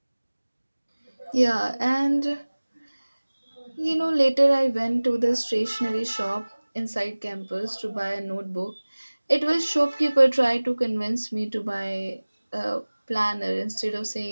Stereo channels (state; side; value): inverted; both; correlation -1.00